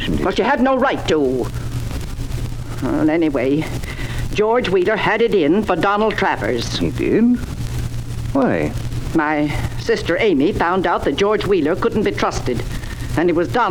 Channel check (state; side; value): identical; both; correlation 1.00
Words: it. But you had no right to. Well, anyway, George Wheeler had it in for Donald Travers. He did? Why? My sister Amy found out that George Wheeler couldn't be trusted, and it was